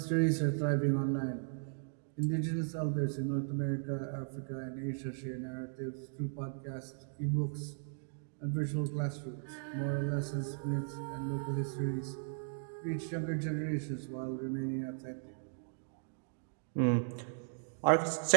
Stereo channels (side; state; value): left; silent; digital silence